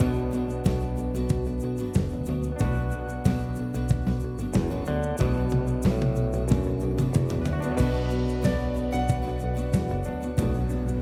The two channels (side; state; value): both; identical; correlation 1.00